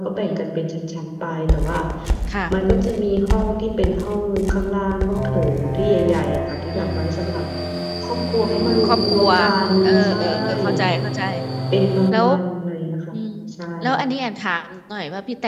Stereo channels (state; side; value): identical; both; correlation 1.00